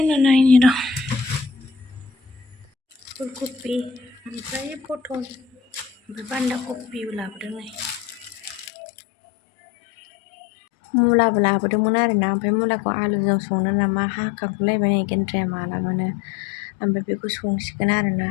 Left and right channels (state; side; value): drops out; right; at 8.7 s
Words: ना नायनि र' फुलकबि ओमफ्राय पटल ओमफ्राय बान्दा कबिबो लाबोदों नै मुलाबो लाबोदोंमोन आरोना ओमफ्राय मुलाखौ आलुजों संनो नामा हाखांगुलायबाय नै गेन्द्राया मालाबानो ओमफ्राय बेखौ संसिगोन आरोना